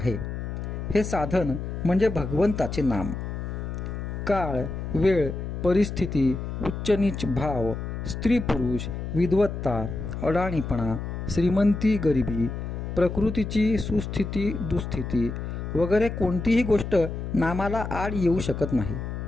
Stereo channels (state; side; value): noise; left; hum, 5 dB below the sound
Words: हे साधन म्हणजे भगवंताचे नाम. काळ, वेळ, परिस्थिती, उच्च नीच भाव, स्त्री पुरुष, विद्वत्ता, अडाणीपणा, श्रीमंती गरिबी, प्रकृतीची सुस्थिती दुस्थिती वगैरे कोणतीही गोष्ट नामाला आड येऊ शकत नाही.